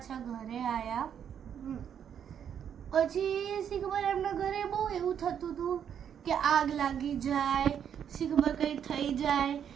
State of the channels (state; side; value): quieter; left; 8.6 dB